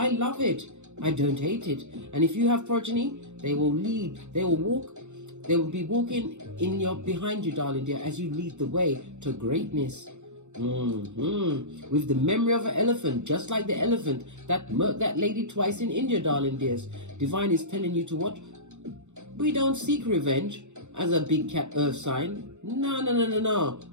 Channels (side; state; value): left; late; 0.84 ms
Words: love it. I don't hate it. And if you have progeny, they will lead, they will walk, they will be walking behind you, darling dear, as you lead the way to greatness. With the memory of an elephant, just like the elephant that murked that lady twice in India, darling dears. Divine is telling you to what? We don't seek revenge as a big cat earth sign. No.